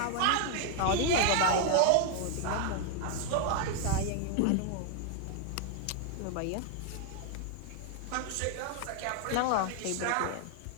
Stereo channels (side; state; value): both; different; correlation 0.00